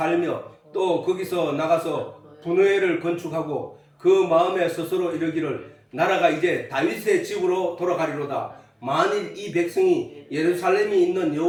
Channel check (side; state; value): both; identical; correlation 1.00